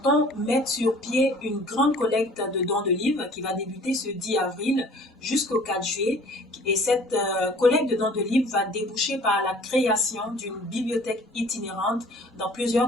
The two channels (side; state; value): both; normal; correlation 0.51